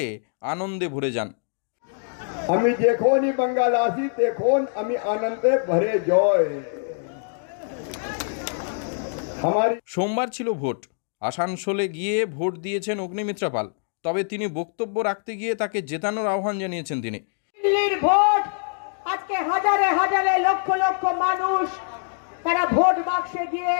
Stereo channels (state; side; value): silent; right; digital silence